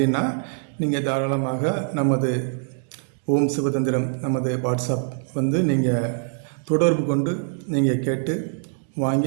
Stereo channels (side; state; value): left; silent; 63 dB below the other